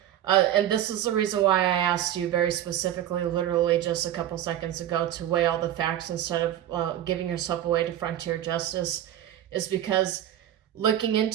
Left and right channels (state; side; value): quieter; left; 11.6 dB